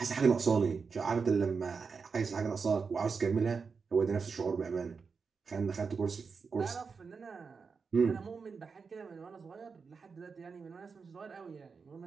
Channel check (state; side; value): quieter; left; 5.2 dB